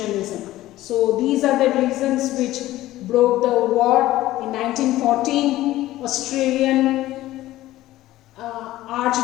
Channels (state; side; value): quieter; right; 15.6 dB